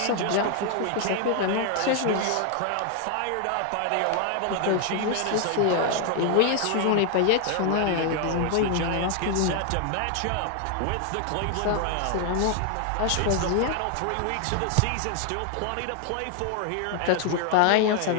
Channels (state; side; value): different; both; correlation 0.00